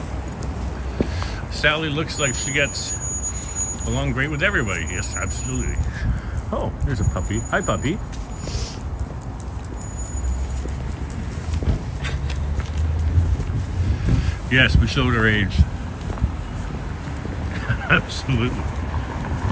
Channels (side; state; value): both; identical; correlation 1.00